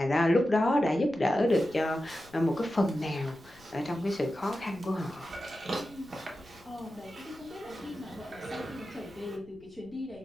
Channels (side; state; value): left; noise; rumble, 25 dB below the sound